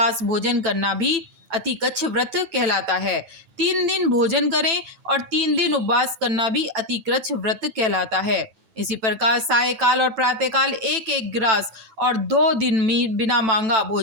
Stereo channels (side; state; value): left; late; 9.0 ms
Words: भोजन करना भी अतिकच्छ व्रत कहलाता है। 3 दिन भोजन करें और 3 दिन उपवास करना भी अतिकच्छ व्रत कहलाता है। इसी प्रकार सायकाल और प्रातःकाल 1-1 ग्रास और 2 दिन बिना मांगा